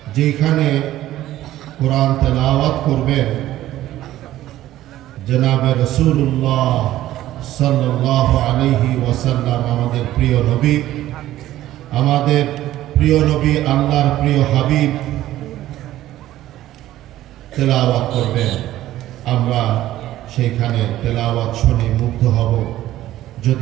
যেখানে কোরআন তেলাওয়াত করবেন জনাবে রাসূলুল্লাহ সাল্লাল্লাহু আলাইহি ওয়াসাল্লাম, আমাদের প্রিয় নবী, আল্লাহর প্রিয় হাবিব তেলাওয়াত করবেন। আমরা সেইখানে তেলাওয়াত শুনে মুগ্ধ হব।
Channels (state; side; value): quieter; left; 14.2 dB